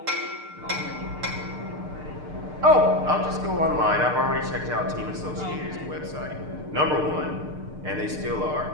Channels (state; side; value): late; left; 6.7 ms